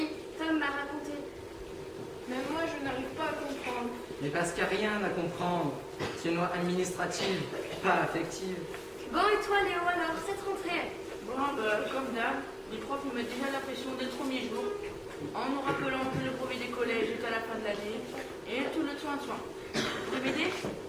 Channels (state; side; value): identical; both; correlation 1.00